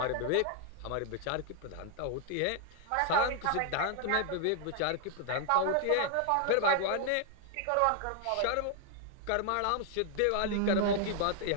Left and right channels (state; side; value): different; both; correlation 0.00